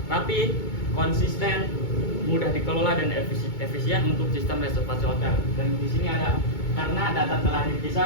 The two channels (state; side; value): late; right; 2.2 ms